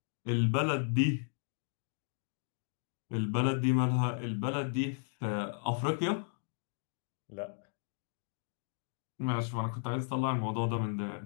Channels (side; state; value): right; silent; digital silence